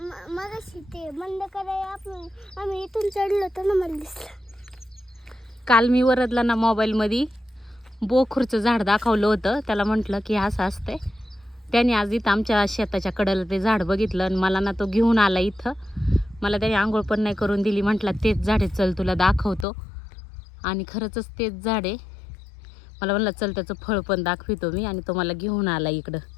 मगाशी ते बंद करायला आम्ही इथून चढलो होतो ना, मला दिसलं. काल मी वरदला ना मोबाईलमध्ये बोखूरचं झाड दाखवलं होतं. त्याला म्हटलं की असं असतंय. त्याने आज इथं आमच्या शेताच्या कडेला ते झाड बघितलं आणि मला ना तो घेऊन आला इथं. मला त्याने आंघोळ पण नाही करून दिली. म्हटलं तेच झाड आहे, चल तुला दाखवतो. आणि खरंच तेच झाड आहे. मला म्हणलं चल त्याचं फळ पण दाखवितो मी, आणि तो मला घेऊन आला इकडं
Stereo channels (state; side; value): drops out; right; at 19.7 s